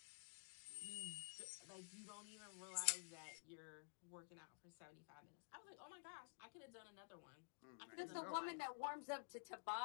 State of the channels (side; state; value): right; silent; digital silence